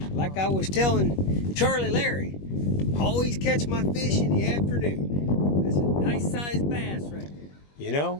like I was telling Charlie Larry, always catch my fish in the afternoon. That's a nice sized bass right there. You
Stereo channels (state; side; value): late; right; 21 ms